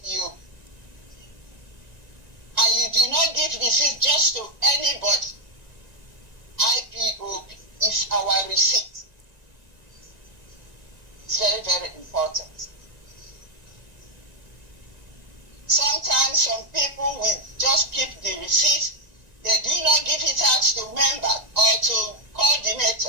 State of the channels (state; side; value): late; left; 1.9 ms